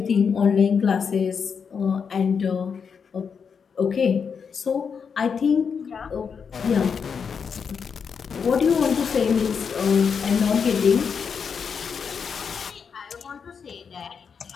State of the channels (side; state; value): right; quieter; 6.3 dB